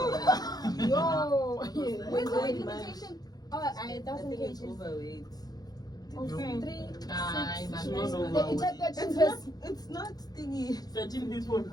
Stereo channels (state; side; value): late; right; 0.19 ms